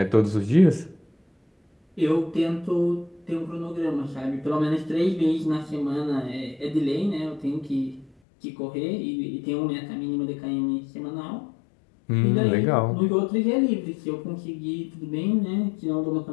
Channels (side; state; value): right; drops out; at 8.1 s